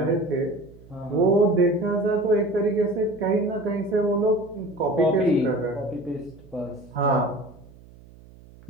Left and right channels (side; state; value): right; noise; hum, 23 dB below the sound